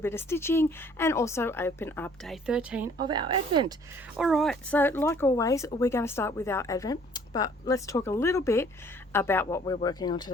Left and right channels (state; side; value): normal; both; correlation 0.57